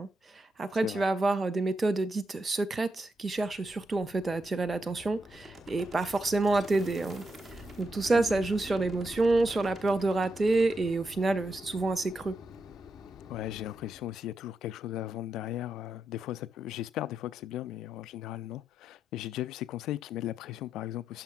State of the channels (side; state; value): both; normal; correlation 0.85